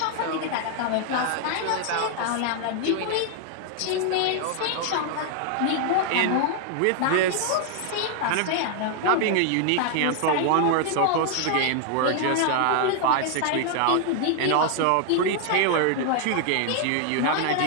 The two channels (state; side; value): different; both; correlation 0.00